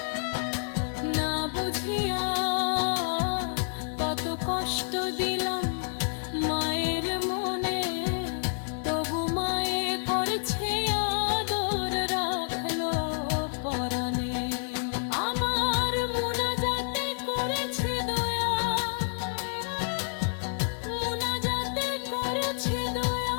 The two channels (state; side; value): silent; right; digital silence